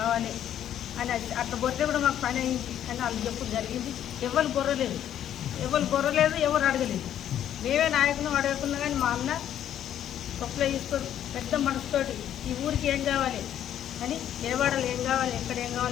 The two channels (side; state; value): right; quieter; 10.6 dB